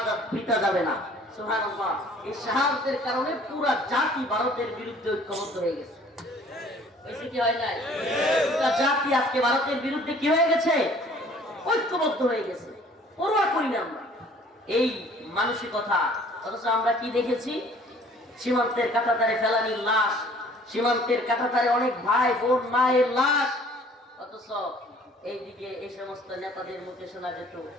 বৃথা যাবে না। সুবহানাল্লাহ। এই শাহাদাতের কারণে পুরো জাতি ভারতের বিরুদ্ধে ঐক্যবদ্ধ হয়ে গেছে। কি হয় নাই? পুরো জাতি আজকে ভারতের বিরুদ্ধে কি হয়ে গেছে? ঐক্যবদ্ধ হয়ে গেছে। পরোয়া করি না আমরা এই মানসিকতা। অথচ আমরা কি দেখেছি? সীমান্তের কাঁটাতারে ফেলানির লাশ, সীমান্তের কাঁটাতারে অনেক ভাই বোন মায়ের লাশ। অথচ এইদিকে এই সমস্ত নেতাদের মুখে শোনা যেত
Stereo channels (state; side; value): normal; both; correlation 0.54